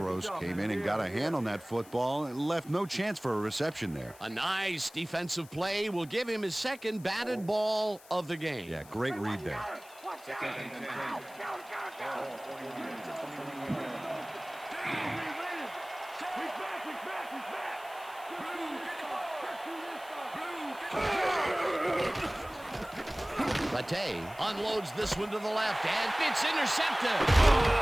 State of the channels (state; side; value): noise; left; hiss, 22 dB below the sound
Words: came in and got a hand on that football and left no chance for a reception there. A nice defensive play will give him his second batted ball of the game. Yeah, great read there. Latte unloads this one to the left, and it's intercepted.